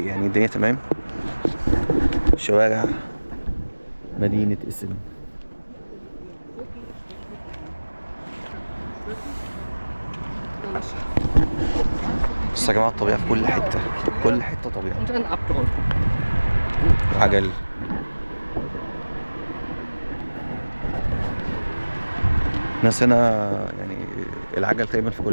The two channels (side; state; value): both; inverted; correlation -1.00